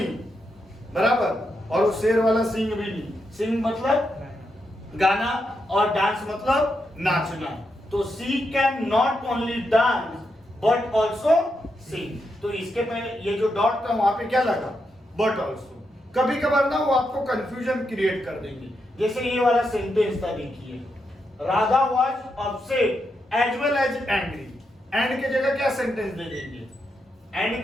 बराबर, और वो शेर वाला सिंग भी नहीं। सिंग मतलब गाना और डांस मतलब नाचना। तो she can not only dance but also sing. तो इसके पहले ये जो डॉट था वहां पे क्या लगा, बट ऑल्सो। कभी कभार ना वो आपको कंफ्यूजन क्रिएट कर देंगे। जैसे ये वाला सेंटेंस था, देखिए, Radha was upset as well as angry. And के जगह क्या सेंटेंस दे देंगे, एंड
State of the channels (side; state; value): both; normal; correlation 0.83